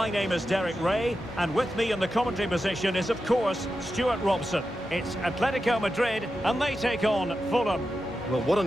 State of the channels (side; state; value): both; normal; correlation 0.90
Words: name is Derek Ray, and with me in the commentary position is, of course, Stuart Robson. It's Atlético Madrid, and they take on Fulham. Well, what a